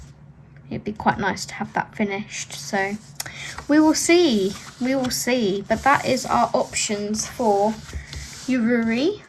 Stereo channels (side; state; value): both; identical; correlation 1.00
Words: It'd be quite nice to have that finished, so we will see. We will see. But that is our options for Yururi